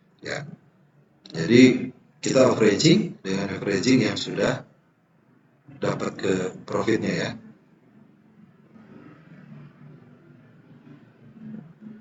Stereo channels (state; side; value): identical; both; correlation 1.00